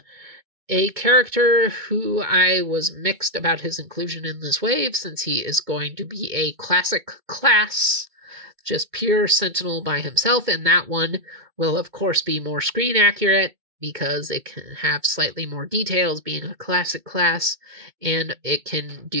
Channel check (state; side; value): late; left; 2.2 ms